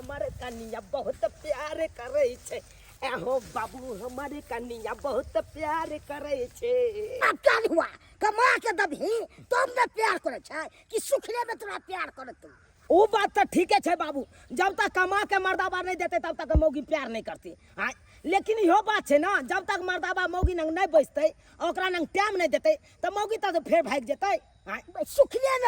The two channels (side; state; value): both; identical; correlation 1.00